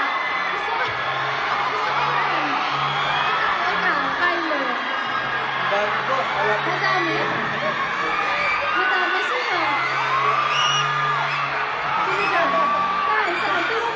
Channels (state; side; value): identical; both; correlation 1.00